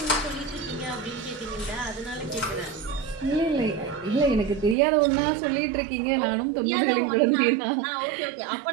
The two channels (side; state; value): left; drops out; at 4.8 s